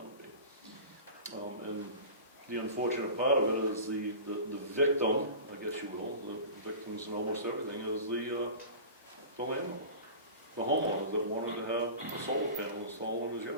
to be? And the unfortunate part of it is the victim, I guess you will, the victims in almost everything, is the landlord, the homeowner that wanted to have a solar panel installed in his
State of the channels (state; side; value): inverted; both; correlation -0.35